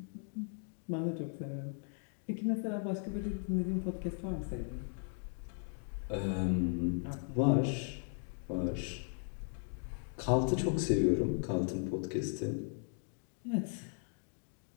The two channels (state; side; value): silent; right; 53 dB below the other